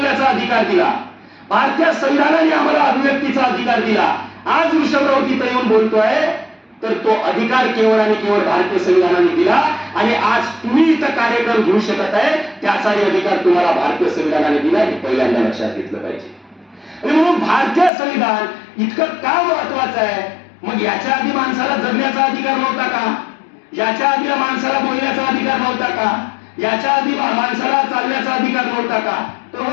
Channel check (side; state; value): right; drops out; at 17.9 s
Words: अधिकार दिला, भारतीय संविधानाने आम्हाला अभिव्यक्तीचा अधिकार दिला. आज वृषभराव तिथं येऊन बोलतोय तर तो अधिकार केवळ आणि केवळ भारतीय संविधानाने दिला आणि आज तुम्ही इथं कार्यक्रम घेऊ शकत आहे त्याचाही अधिकार तुम्हाला भारतीय संविधानाने दिला, हे पहिल्यांदा लक्षात घेतलं पाहिजे. आणि म्हणून भारतीय संविधान इतकं का महत्वाचं आहे? मग याच्या आधी माणसाला जगण्याचा अधिकार नव्हता का? याच्या आधी माणसाला बोलण्याचा अधिकार नव्हता का? याच्या आधी माणसाला चालण्याचा अधिकार नव्हता का? तर